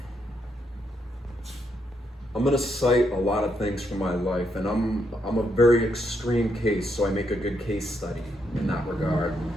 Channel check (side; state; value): both; normal; correlation 0.77